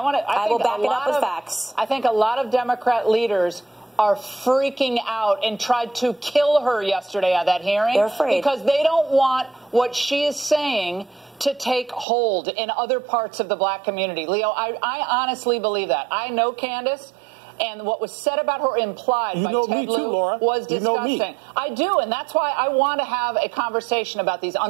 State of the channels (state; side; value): drops out; left; at 12.1 s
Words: will back it up with facts. I think a lot of Democrat leaders are freaking out and tried to kill her yesterday at that hearing. They're afraid. Because they don't want what she is saying to take hold in other parts of the Black community. Leo, I honestly believe that. I know Candace. And what was said about her implied by Ted Lieu was disgusting. I do, and that's why I want to have a conversation about these